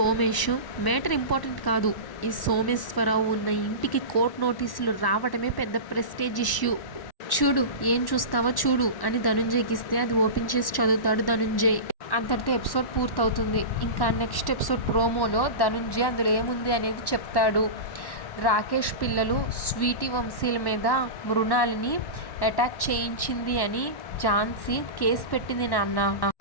మేటర్ ఇంపార్టెంట్ కాదు, ఈ సోమేశ్వరరావు ఉన్న ఇంటికి కోర్టు నోటీసులు రావడమే పెద్ద ప్రెస్టేజ్ ఇష్యూ, చూడు ఏం చూస్తావో చూడు అని ధనుంజయ్కి ఇస్తే అది ఓపెన్ చేసి చదువుతాడు ధనుంజయ్. అంతటితో ఎపిసోడ్ పూర్తవుతుంది. ఇంకా నెక్స్ట్ ఎపిసోడ్ ప్రోమోలో ధనుంజయ్ అందులో ఏముంది అనేది చెప్తాడు. రాకేష్ పిల్లలు స్వీటీ వంశీల మీద మృణాలిని అటాక్ చేయించింది అని ఝాన్సీ కేసు పెట్టింది నాన్న,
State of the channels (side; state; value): right; late; 1.1 ms